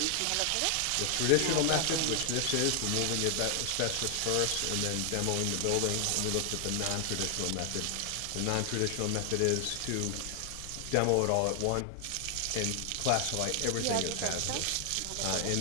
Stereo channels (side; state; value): both; different; correlation 0.00